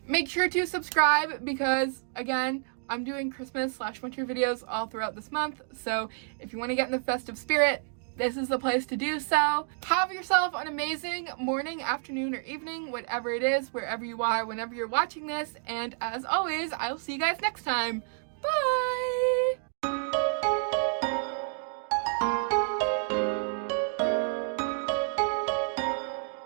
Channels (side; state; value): left; silent; 58 dB below the other